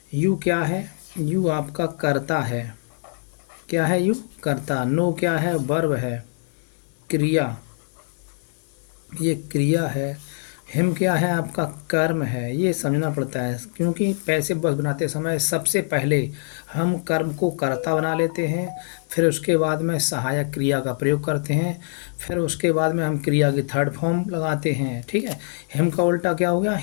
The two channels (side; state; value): right; silent; digital silence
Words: यू क्या है, यू आपका कर्ता है। क्या है यू, कर्ता। नो क्या है, वर्ब है, क्रिया, ये क्रिया है। हिम क्या है, आपका कर्म है। ये समझना पड़ता है क्योंकि पैसिव वॉइस बनाते समय सबसे पहले हम कर्म को कर्ता बना लेते हैं, फिर उसके बाद में सहायक क्रिया का प्रयोग करते हैं, फिर उसके बाद में हम क्रिया की थर्ड फॉर्म लगाते हैं। ठीक है। हिम का उल्टा क्या हो गया,